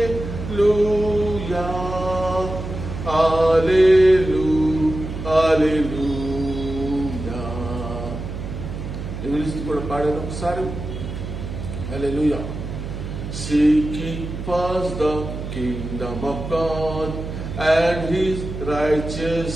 కూడా పాడాను ఒకసారి. హల్లెలూయా. Seek ye first the kingdom of God and His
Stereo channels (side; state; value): right; noise; hum, 7 dB below the sound